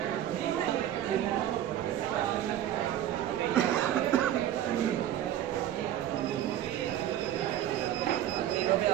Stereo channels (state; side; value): quieter; left; 11.7 dB